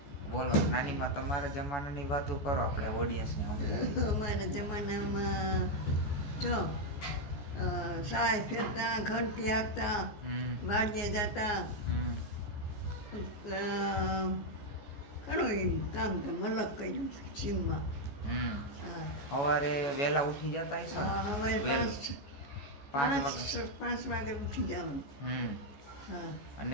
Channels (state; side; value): late; right; 14 ms